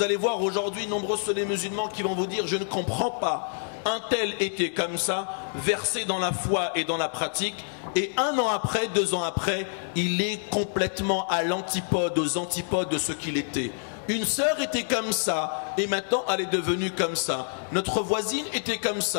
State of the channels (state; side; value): silent; right; digital silence